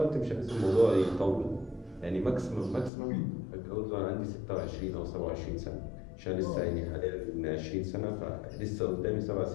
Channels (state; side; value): drops out; right; at 2.9 s